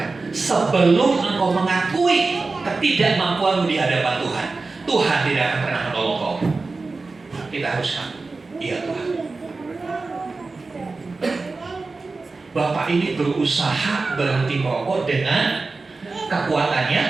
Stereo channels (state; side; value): quieter; left; 3.8 dB